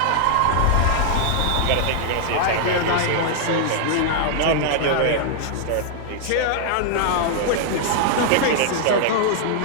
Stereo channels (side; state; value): both; different; correlation 0.00